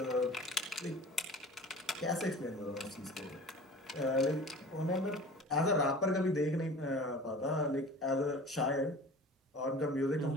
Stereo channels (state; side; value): normal; both; correlation 0.41